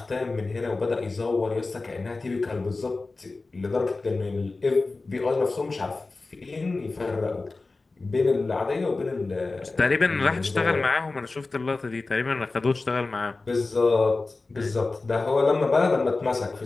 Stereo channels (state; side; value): quieter; right; 3.5 dB